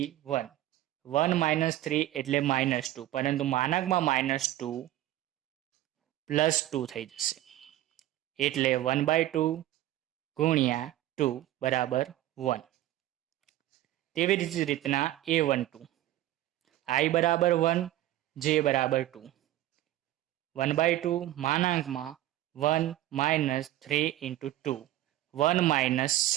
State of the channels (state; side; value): quieter; left; 14.6 dB